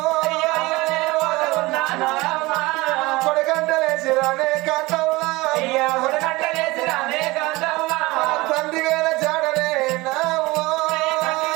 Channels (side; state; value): left; quieter; 21.5 dB